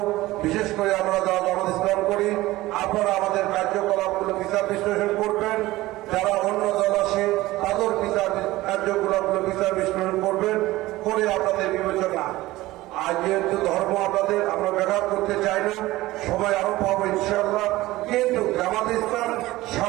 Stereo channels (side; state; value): left; quieter; 17.9 dB